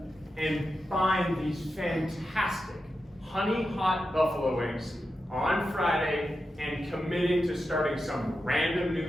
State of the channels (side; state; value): both; normal; correlation 0.90